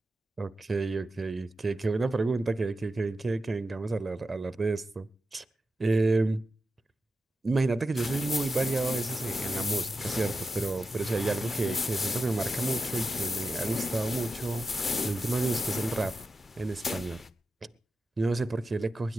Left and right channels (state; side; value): normal; both; correlation 0.89